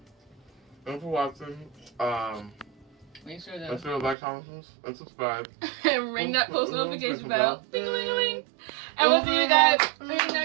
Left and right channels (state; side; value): drops out; left; at 4.2 s